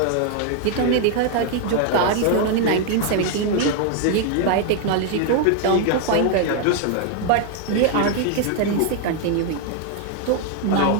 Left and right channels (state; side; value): different; both; correlation 0.00